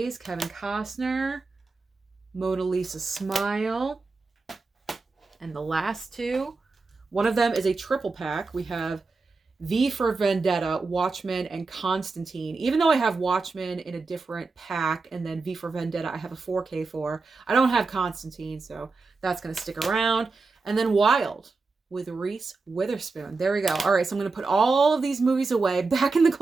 Kevin Costner. Mona Lisa Smile. And the last two, one of them is a triple pack. We have V for Vendetta, Watchmen, and Constantine. Even though I have Watchmen in a different pack, and then V for Vendetta I have a 4K for, I don't have Constantine, so that's going to stick around. And then Wild with Reese Witherspoon. There we go. All right, so I'm going to put all of these movies away, back in the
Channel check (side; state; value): left; quieter; 4.0 dB